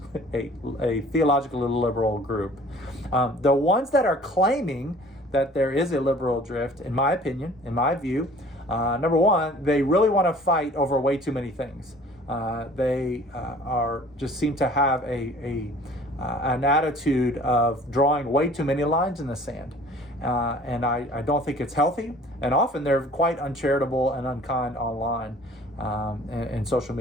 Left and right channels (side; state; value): both; normal; correlation 0.50